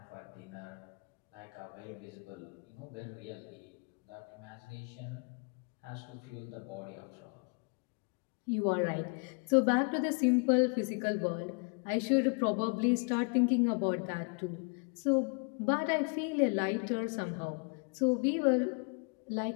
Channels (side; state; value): right; quieter; 38.7 dB